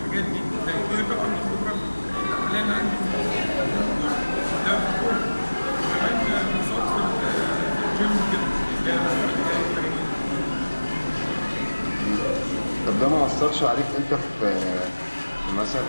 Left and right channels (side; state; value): both; inverted; correlation -1.00